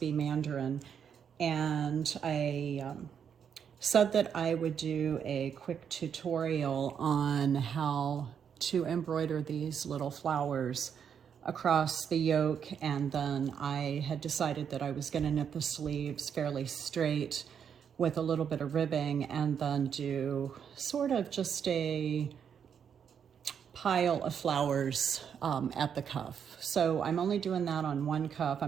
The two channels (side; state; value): left; quieter; 7.7 dB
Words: Mandarin. And I said that I would do a quick tutorial on how to embroider these little flowers across the yoke, and then I had decided that I was going to knit the sleeves fairly straight with a little bit of ribbing and then do sort of just a pile of flowers at the cuff. So I'm only doing that on one cuff.